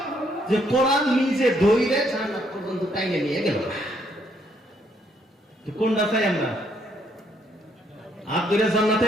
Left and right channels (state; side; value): normal; both; correlation 0.71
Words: যে কোরআন নিজে দইরে জান্নাত পর্যন্ত টাইনে নিয়ে গেল। কোনটা চাই আমরা? আব্দুল